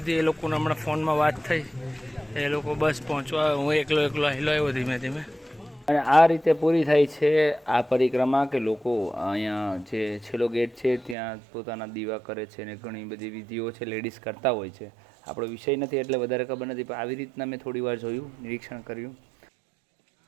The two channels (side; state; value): left; drops out; at 11.2 s